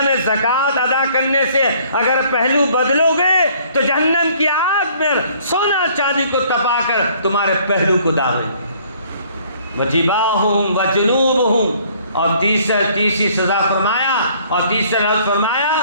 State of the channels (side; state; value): both; inverted; correlation -0.59